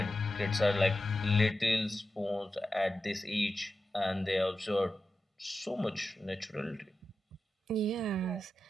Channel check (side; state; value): both; normal; correlation 0.91